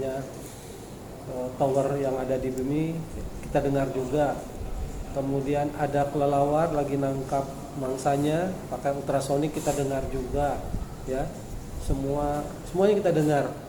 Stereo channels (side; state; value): both; identical; correlation 1.00